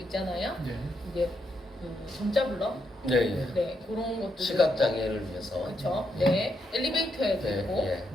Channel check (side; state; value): both; normal; correlation 0.80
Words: 있잖아요. 이게 정자 블럭, 네, 그런 것들 시각 장애를 위해서. 그렇죠. 네, 엘리베이터에도 있고,